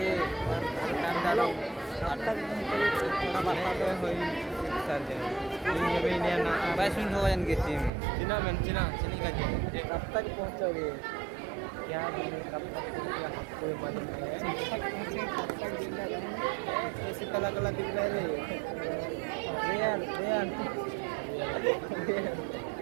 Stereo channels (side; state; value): left; drops out; at 7.9 s